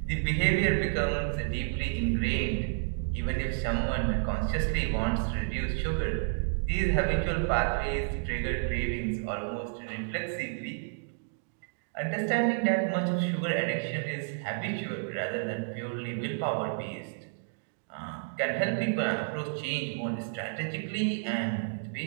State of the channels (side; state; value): left; silent; digital silence